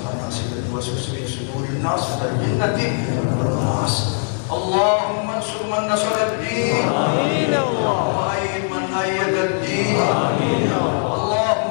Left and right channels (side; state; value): right; silent; 63 dB below the other